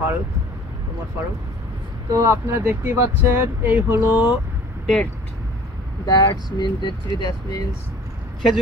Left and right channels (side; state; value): both; normal; correlation 0.49